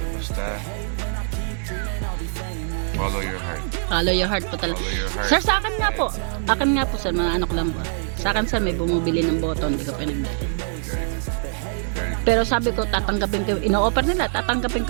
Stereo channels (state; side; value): silent; left; digital silence